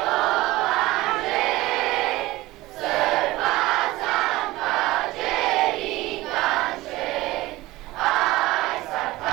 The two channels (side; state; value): left; quieter; 18.7 dB